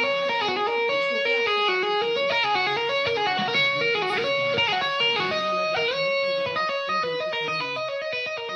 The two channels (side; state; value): both; identical; correlation 1.00